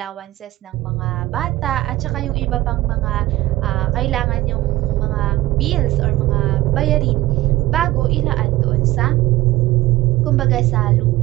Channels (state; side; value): quieter; left; 17.1 dB